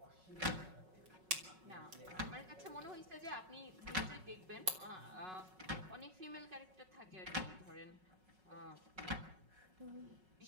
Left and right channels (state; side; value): late; left; 5.4 ms